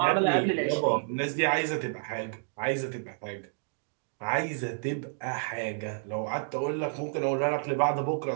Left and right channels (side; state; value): left; silent; digital silence